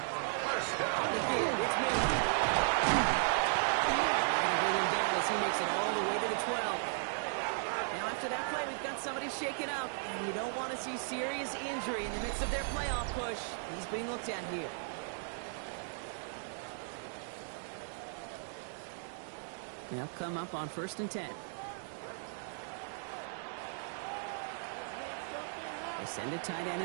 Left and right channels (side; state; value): left; silent; digital silence